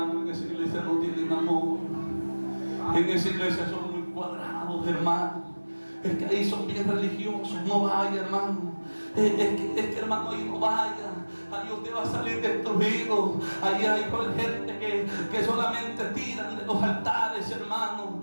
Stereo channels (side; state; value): both; inverted; correlation -1.00